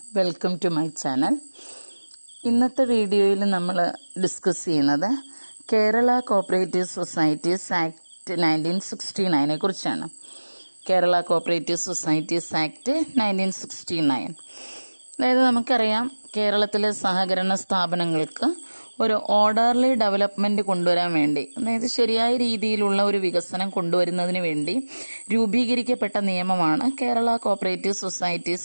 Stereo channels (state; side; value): inverted; both; correlation -1.00